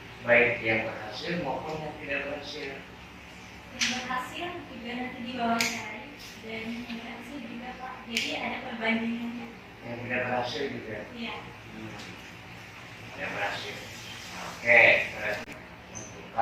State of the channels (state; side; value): identical; both; correlation 1.00